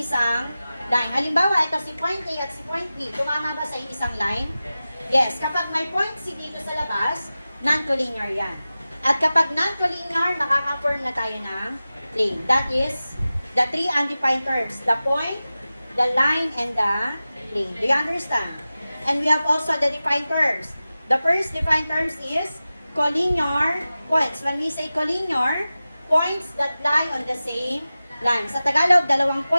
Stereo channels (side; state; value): both; inverted; correlation -0.96